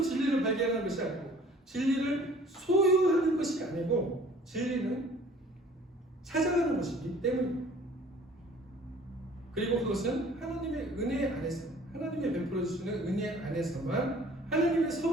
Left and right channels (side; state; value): both; normal; correlation 0.52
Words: 진리를 발견하는 것이 아니고 진리를 소유하는 것이 아니고 진리는 찾아가는 것이기 때문입니다. 그리고 그것은 하나님의 은혜 안에서 하나님의 베풀어 주시는 은혜 안에서만 하나님의